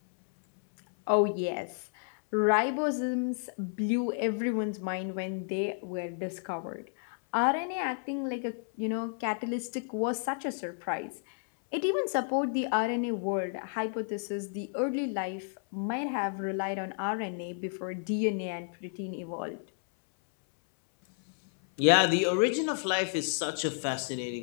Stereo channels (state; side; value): silent; right; 57 dB below the other